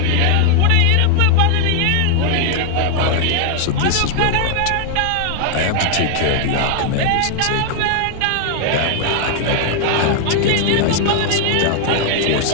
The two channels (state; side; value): different; both; correlation 0.00